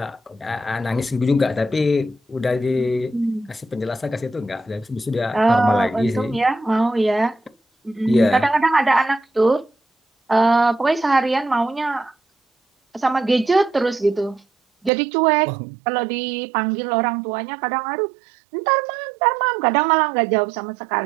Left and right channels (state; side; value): drops out; left; at 14.9 s